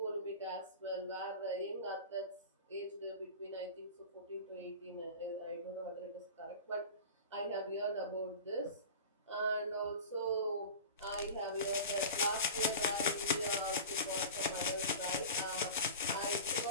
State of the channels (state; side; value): inverted; both; correlation -0.34